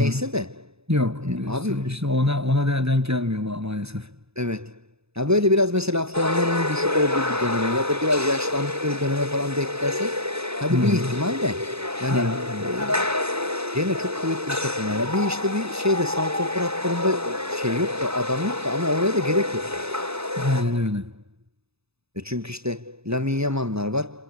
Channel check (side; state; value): left; late; 0.79 ms